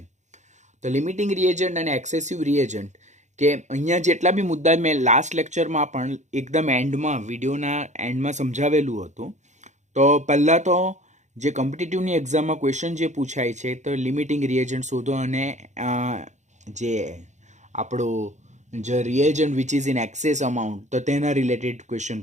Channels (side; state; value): left; late; 0.34 ms